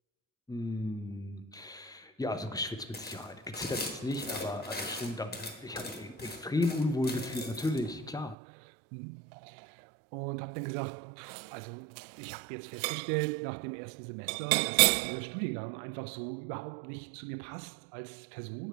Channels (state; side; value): drops out; left; at 8.3 s